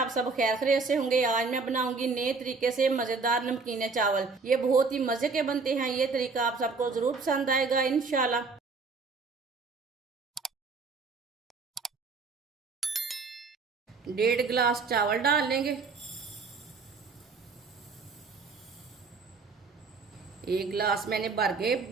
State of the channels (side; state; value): left; quieter; 4.4 dB